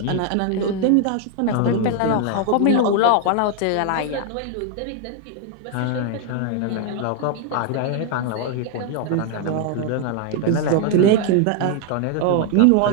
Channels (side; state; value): both; different; correlation 0.00